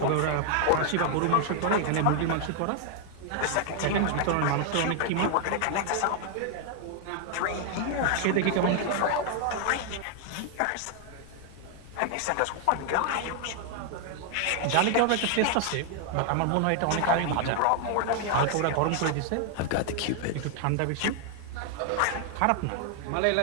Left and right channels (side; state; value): both; different; correlation 0.00